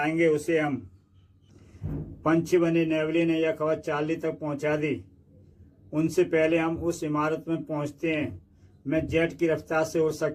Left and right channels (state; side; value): identical; both; correlation 1.00